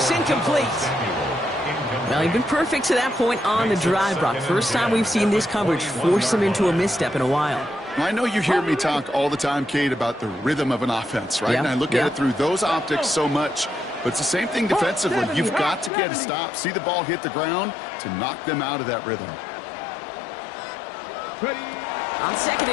Incomplete. Well, he's been perfect to that point on the drive, Brock. First time we've seen this coverage force him into a misstep in a while. I know you hear me talk all the time, Kate, about the rhythm of an offense, right? And I look at it through those optics so much. But it's the same thing defensively. You've got to get a stop, see the ball hit the ground to knock them out of that rhythm. On 2nd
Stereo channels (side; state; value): right; drops out; at 15.9 s